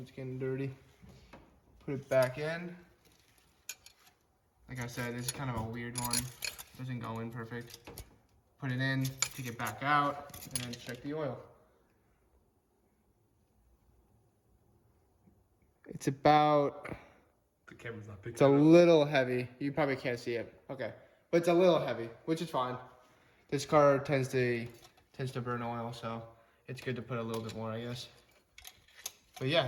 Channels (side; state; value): both; identical; correlation 1.00